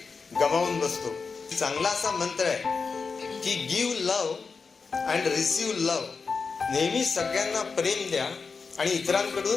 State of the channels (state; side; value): quieter; right; 4.9 dB